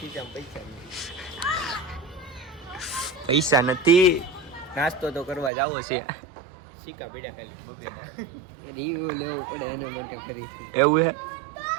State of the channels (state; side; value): drops out; left; at 5.5 s